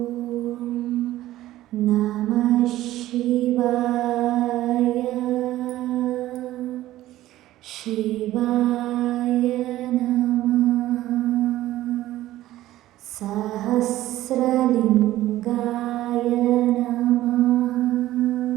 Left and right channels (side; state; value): left; quieter; 15.0 dB